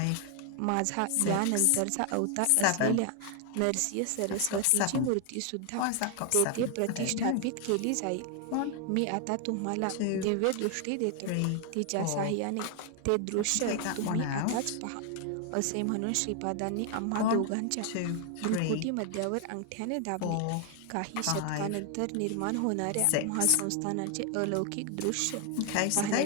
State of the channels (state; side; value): different; both; correlation 0.00